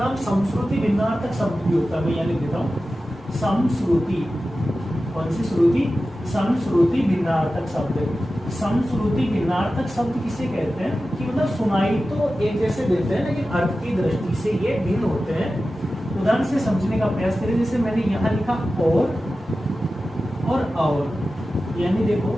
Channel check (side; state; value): both; normal; correlation 0.94